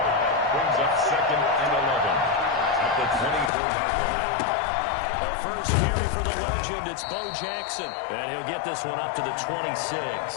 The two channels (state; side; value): drops out; right; at 3.5 s